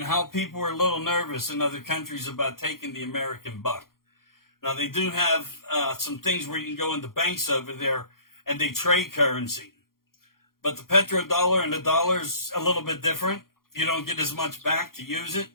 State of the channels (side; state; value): right; late; 0.92 ms